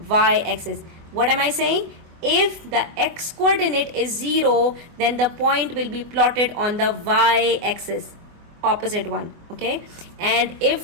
y-axis. What am I saying? If the x coordinate is 0, then the point will be plotted on the y-axis, opposite one. Okay. okay? And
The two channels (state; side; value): late; left; 24 ms